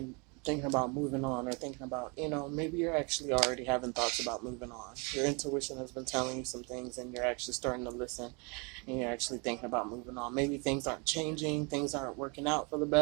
thinking about moving on, or thinking about, maybe you're actually already having thoughts about moving on. Your intuition has been telling you some things and you're actually starting to listen and you're actually thinking about moving on. Maybe things aren't changing, things aren't working out for the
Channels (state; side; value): quieter; left; 32.0 dB